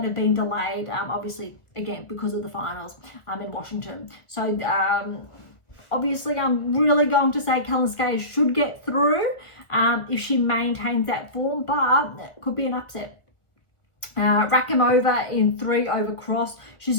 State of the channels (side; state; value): right; late; 1.4 ms